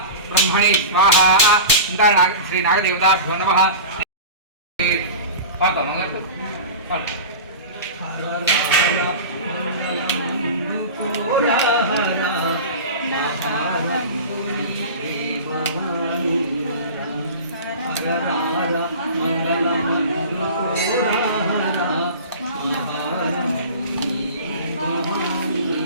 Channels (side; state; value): both; inverted; correlation -0.33